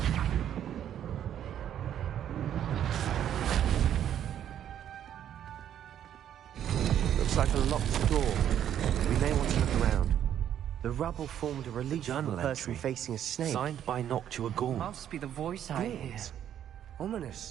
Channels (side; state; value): left; quieter; 10.2 dB